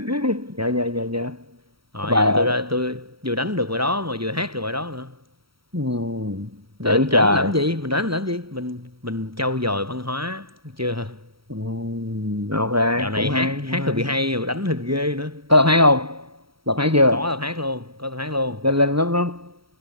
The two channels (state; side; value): late; left; 0.75 ms